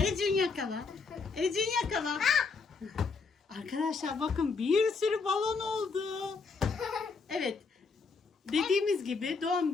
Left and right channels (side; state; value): right; quieter; 4.7 dB